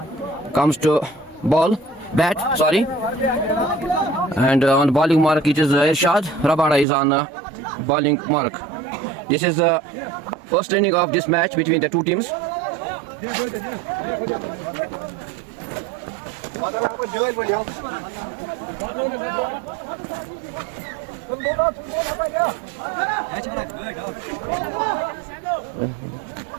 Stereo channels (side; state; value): left; drops out; at 6.9 s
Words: comes to bat, and on bowling mark it is Irshad Rabada is on bowling mark. This is the first inning of this match between the two teams.